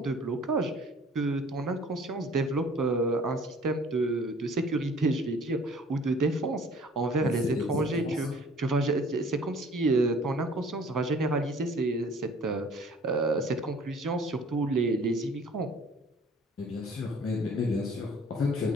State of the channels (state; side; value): normal; both; correlation 0.52